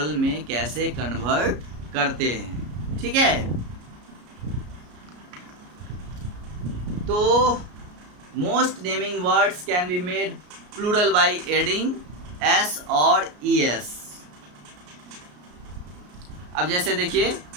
में कैसे कन्वर्ट करते हैं। ठीक है, तो most naming words can be made plural by adding S और ई एस। अब जैसे देखिए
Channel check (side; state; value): left; late; 33 ms